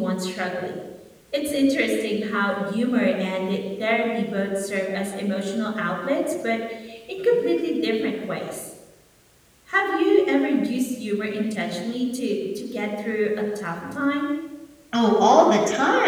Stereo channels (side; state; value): both; identical; correlation 1.00